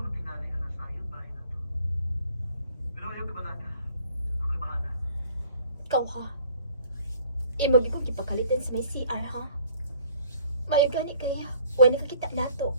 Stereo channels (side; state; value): both; inverted; correlation -0.55